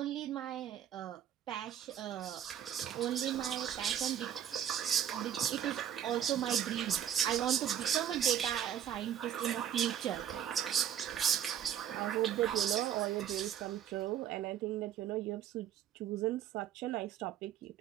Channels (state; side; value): quieter; left; 9.9 dB